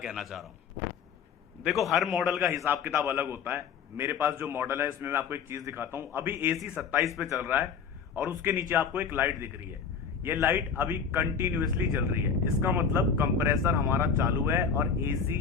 चाह रहा हूँ। देखो, हर मॉडल का हिसाब किताब अलग होता है। मेरे पास जो मॉडल है इसमें मैं आपको एक चीज दिखाता हूँ। अभी एसी 27 पे चल रहा है और उसके नीचे आपको एक लाइट दिख रही है। ये लाइट अभी कंटिन्यूअसली जल रही है। इसका मतलब कंप्रेसर हमारा चालू है और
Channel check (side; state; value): right; quieter; 6.3 dB